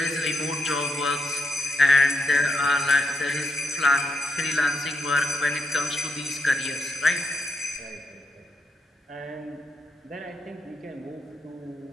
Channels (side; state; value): both; normal; correlation 0.81